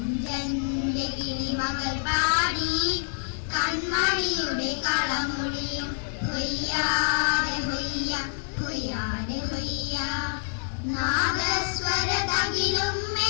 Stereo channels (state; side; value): silent; right; digital silence